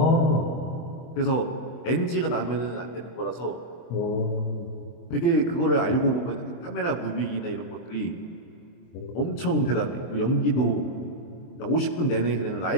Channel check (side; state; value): right; late; 23 ms